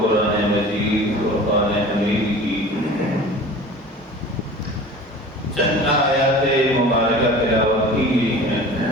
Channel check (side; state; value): both; normal; correlation 0.40